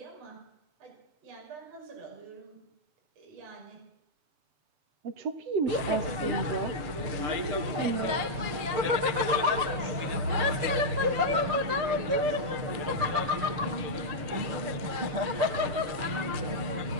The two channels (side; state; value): left; late; 6.7 ms